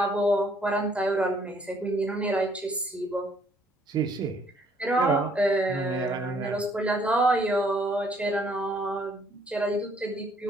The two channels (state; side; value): normal; both; correlation 0.64